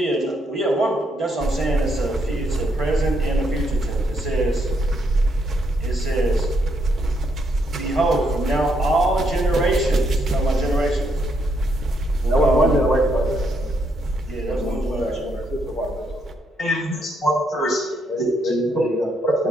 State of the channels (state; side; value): normal; both; correlation 0.76